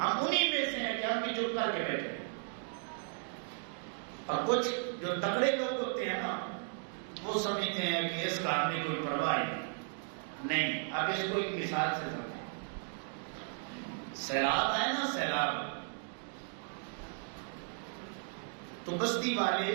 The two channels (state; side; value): silent; left; 54 dB below the other